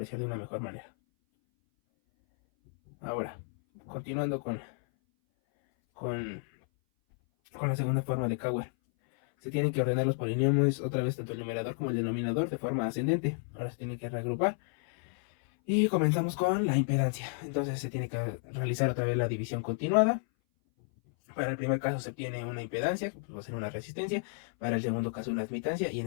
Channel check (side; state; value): right; silent; 57 dB below the other